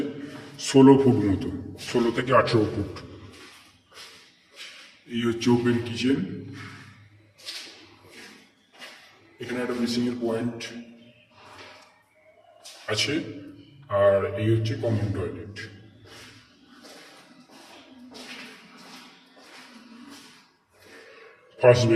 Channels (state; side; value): identical; both; correlation 1.00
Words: 16 ফুট মতো, 16 থেকে 18 ফুট। এই হচ্ছে ওপেন কিচেন। এখানে একটা বেসিংয়ের পয়েন্ট আছে, আর এই হচ্ছে common toilet. First